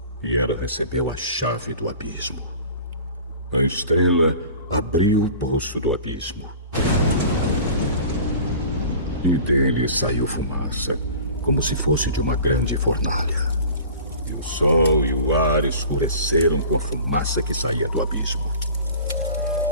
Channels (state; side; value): inverted; both; correlation -0.42